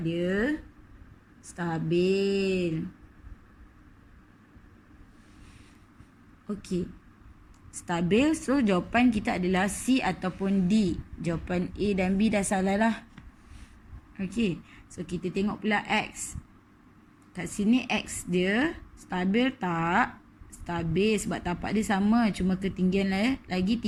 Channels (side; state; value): both; identical; correlation 1.00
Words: dia? Stabil. Okey. Stabil, so jawapan kita adalah C ataupun D. Jawapan A dan B dah salah lah. Okey, so kita tengok pula X. Kat sini X dia stabil tak? Stabil sebab tapak dia sama, cuma ketinggian lagi